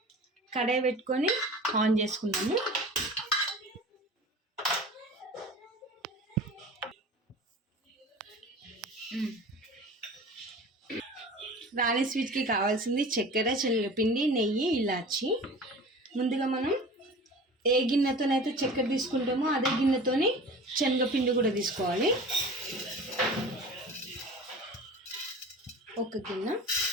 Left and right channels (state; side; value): normal; both; correlation 0.38